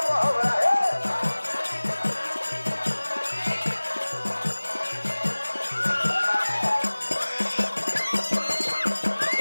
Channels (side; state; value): both; inverted; correlation -1.00